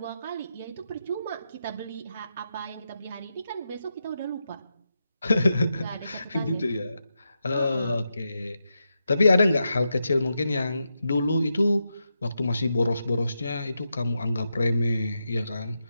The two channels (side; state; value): both; inverted; correlation -0.86